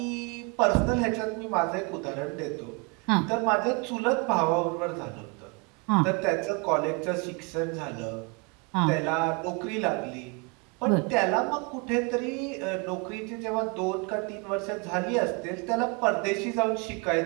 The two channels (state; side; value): quieter; left; 31.5 dB